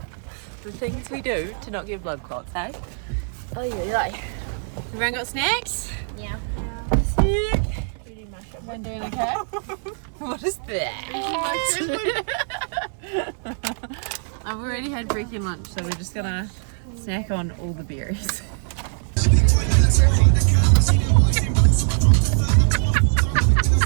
The things we do to not get blood clots, hey? Oh yeah. Everyone got snacks? Yeah. Sick. Everyone doing okay? What is that? I've already had freaking lunch, so we're just gonna snack on all the berries.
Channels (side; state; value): left; silent; digital silence